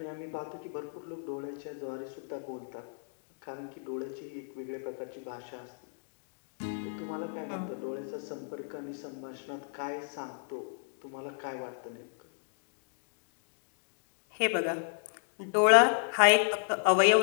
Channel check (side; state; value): right; silent; digital silence